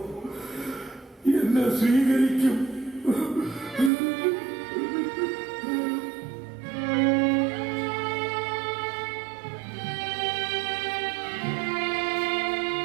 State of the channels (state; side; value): drops out; left; at 3.9 s